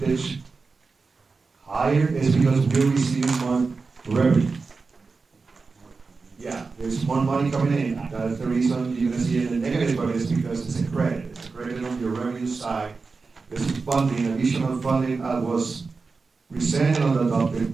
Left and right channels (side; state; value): left; quieter; 4.4 dB